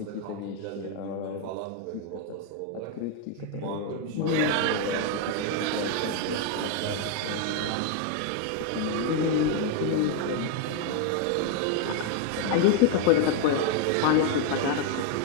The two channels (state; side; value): different; both; correlation 0.01